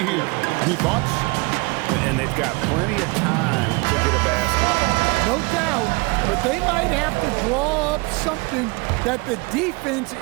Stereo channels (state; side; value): quieter; left; 27.3 dB